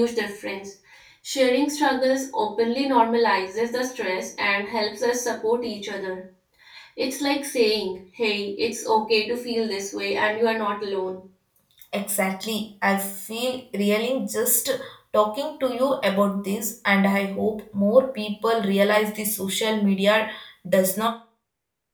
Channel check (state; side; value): identical; both; correlation 1.00